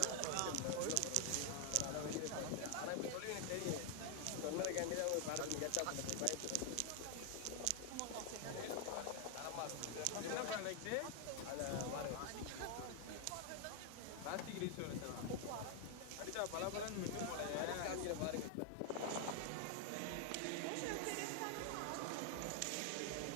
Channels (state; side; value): different; both; correlation 0.00